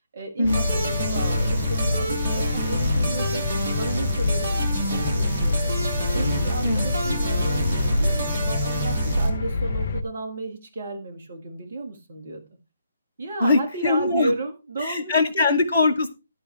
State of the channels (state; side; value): inverted; both; correlation -0.76